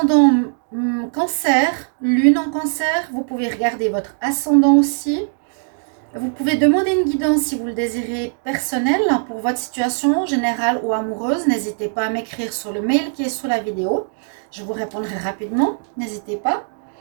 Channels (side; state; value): left; silent; digital silence